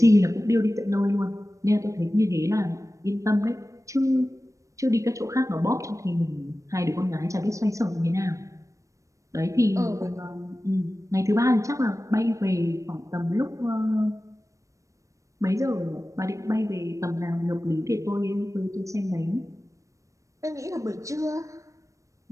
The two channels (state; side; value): late; left; 0.15 ms